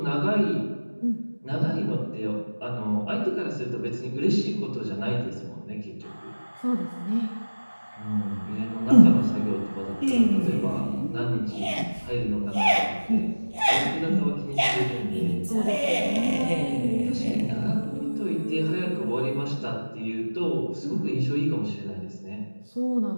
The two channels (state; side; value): inverted; both; correlation -1.00